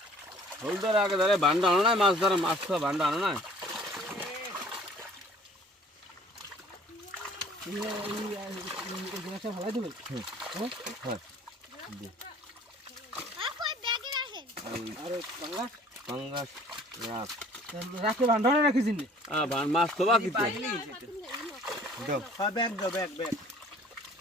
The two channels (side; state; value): both; normal; correlation 0.52